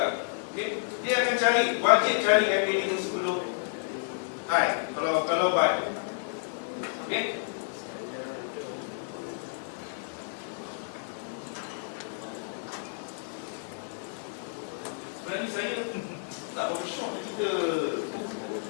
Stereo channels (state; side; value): silent; right; digital silence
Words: Okay? Dia akan cari, wajib cari MA5 sebelum high. Kalau buy. Okay? Sebenarnya saya tak berapa syok kita